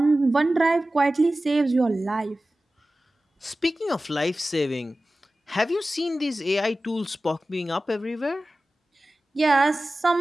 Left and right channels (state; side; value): normal; both; correlation 0.96